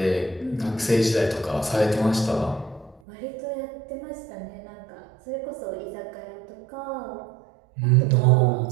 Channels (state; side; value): drops out; left; at 3.0 s